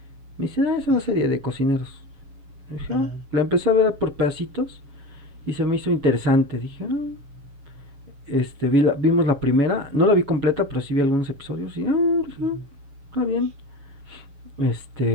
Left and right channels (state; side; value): late; left; 7.1 ms